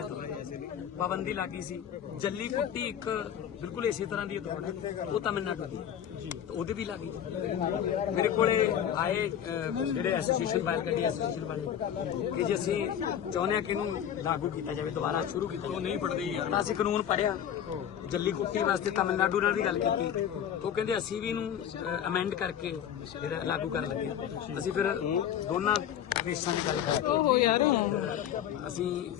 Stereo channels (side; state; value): right; quieter; 9.7 dB